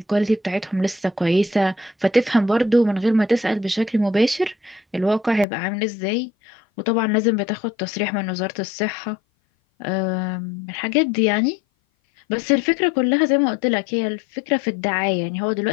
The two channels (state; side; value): drops out; right; at 5.5 s